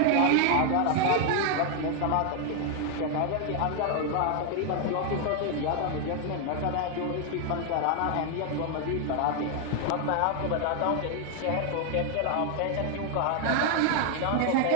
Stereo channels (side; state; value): both; different; correlation 0.00